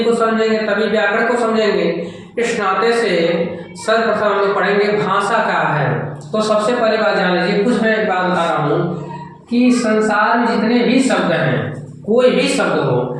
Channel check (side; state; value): both; identical; correlation 1.00